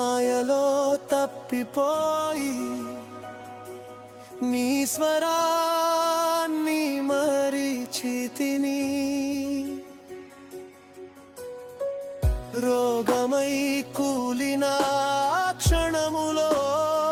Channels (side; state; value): both; identical; correlation 1.00